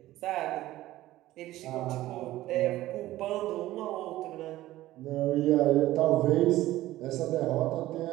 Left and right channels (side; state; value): left; quieter; 15.7 dB